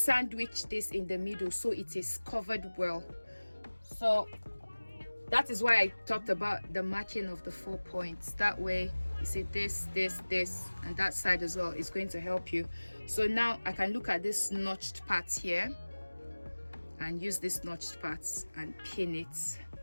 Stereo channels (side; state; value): both; inverted; correlation -1.00